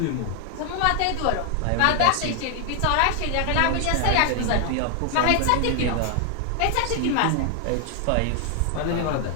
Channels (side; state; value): both; different; correlation 0.00